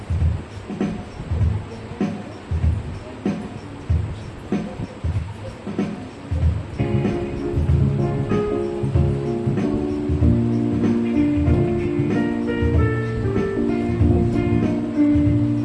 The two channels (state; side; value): identical; both; correlation 1.00